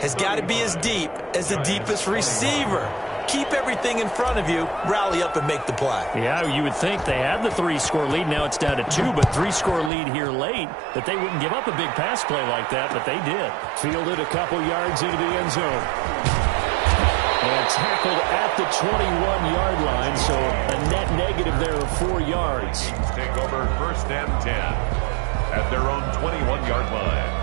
has got to be as deep as the deepest receiver. Keep everything in front of you, rally up and make the play. Yeah, you would think they had the 3-score lead. Now it's down to 2, but 3-score lead here late, that they wouldn't give up a big pass play like that, but they did. Fielded a couple yards into the end zone. And tackled at the 21-yard line, so a net negative there of 4 yards. Take over 1st and 10 at their own 21-yard line.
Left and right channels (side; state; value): left; drops out; at 9.9 s